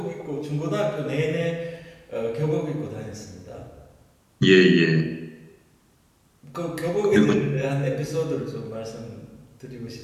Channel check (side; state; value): both; identical; correlation 1.00